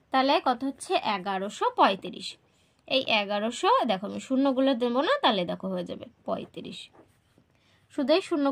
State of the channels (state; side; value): identical; both; correlation 1.00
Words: তাহলে কত হচ্ছে 1135। এই 1100 দেখো আমি শূন্যগুলো দেবো না, তাহলে দেখো হয়ে যাবে 35। শুধু এই